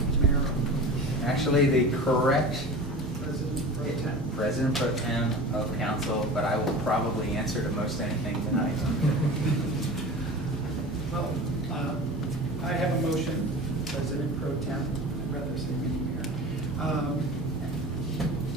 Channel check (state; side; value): normal; both; correlation 0.35